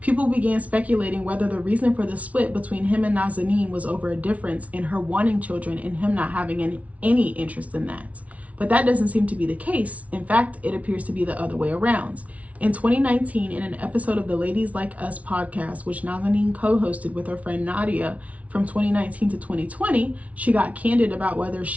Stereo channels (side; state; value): left; late; 0.067 ms